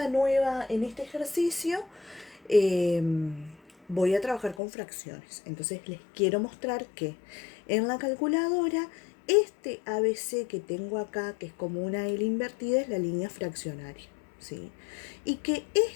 ejercicio voy a trabajar con fracciones. Entonces les quiero mostrar que en la calculadora este ABC que tengo acá, que es como una L invertida, es la línea fraccionaria, ¿sí? Y que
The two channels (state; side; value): drops out; right; at 4.6 s